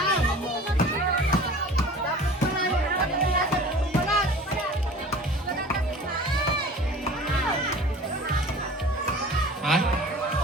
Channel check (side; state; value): both; normal; correlation 0.42